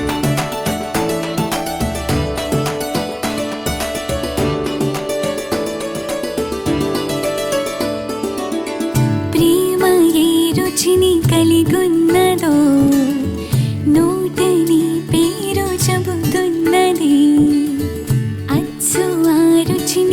ప్రేమ ఏ రుచిని కలిగున్నదో నోటని పేరు చెబుతున్నది అచ్చు ఆ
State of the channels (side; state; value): both; identical; correlation 1.00